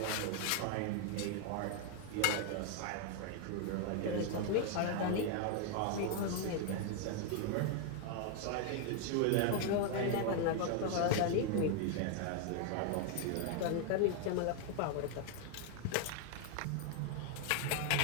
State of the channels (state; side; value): different; both; correlation 0.00